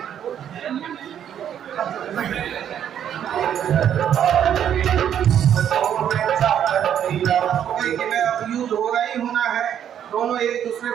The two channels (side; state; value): left; quieter; 9.5 dB